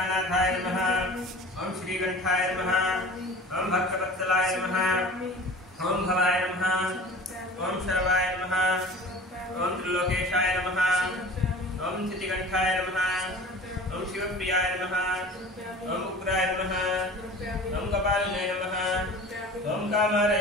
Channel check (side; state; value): both; normal; correlation 0.41